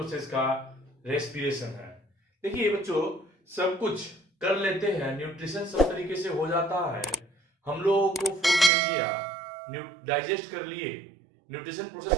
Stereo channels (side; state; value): left; drops out; at 8.7 s